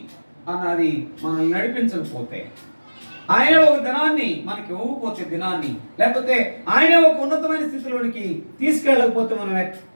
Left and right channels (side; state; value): both; inverted; correlation -1.00